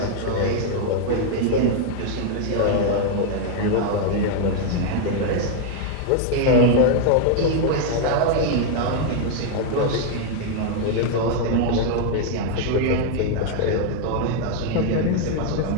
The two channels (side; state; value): both; different; correlation 0.00